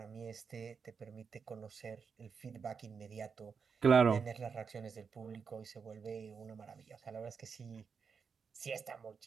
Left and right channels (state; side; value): quieter; left; 5.9 dB